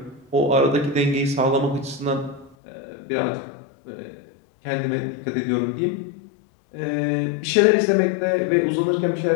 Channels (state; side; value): drops out; right; at 2.6 s